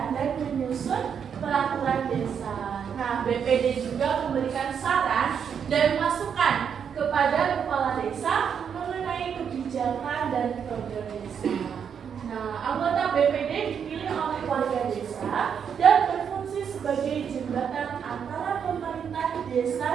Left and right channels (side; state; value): left; quieter; 7.5 dB